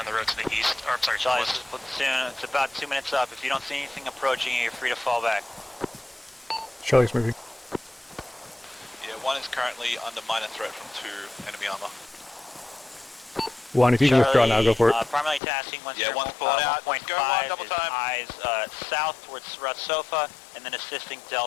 the road to the east. Or, I'm sorry, to the Charlie, this west. is Platoon. It's about 2 minutes up. If you don't see anything approaching you, you're free to fall back. Charlie's moving. Yeah, 1 is currently under minor threat from 2 enemy armor. 1, if you can withdraw now, go for it. Primarily tasking once Yeah, one's pulling out. Let's go, 1.5 double is time. eyes south towards Ratsofa, and then assisting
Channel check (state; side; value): drops out; right; at 15.4 s